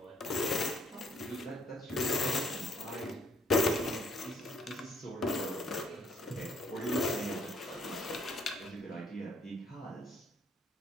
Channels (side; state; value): both; normal; correlation 0.65